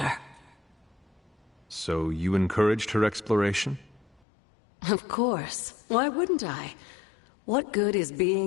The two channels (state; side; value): drops out; right; at 4.2 s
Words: So you encouraged her exploration? Of course. Why wouldn't I? What good is